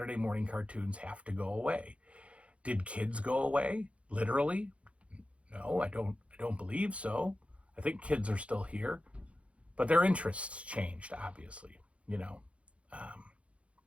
morning cartoons have to go away? Did kids go away? Literally? No, I don't believe so. I think kids are still here. But their interests changed, obviously, and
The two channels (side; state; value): left; late; 0.062 ms